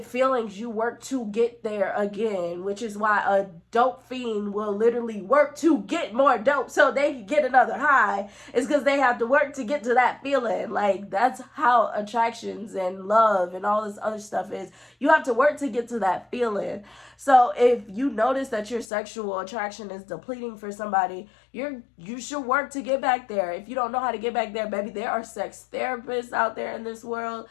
feelings, you work to get there again, which is why a dope fiend will literally work to get more dope so they can get another high. It's because they have to work to get to that feeling. Like, that's how attractions and love and all this other stuff is. You have to work to get to that feeling. So if you notice that your sexual attraction is depleting for somebody, you should work to get back there. If you don't know how to get back there, baby, there are sex therapists out there in this world.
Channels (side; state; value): right; drops out; at 18.9 s